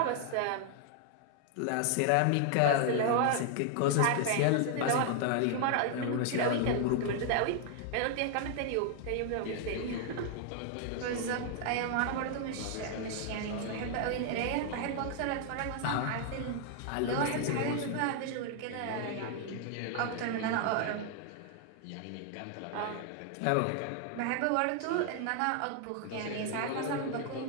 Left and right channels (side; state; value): both; different; correlation 0.00